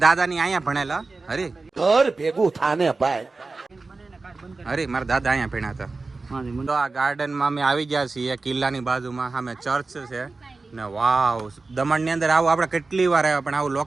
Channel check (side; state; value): left; quieter; 3.7 dB